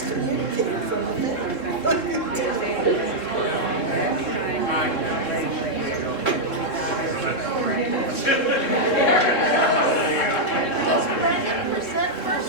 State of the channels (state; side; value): late; right; 3.7 ms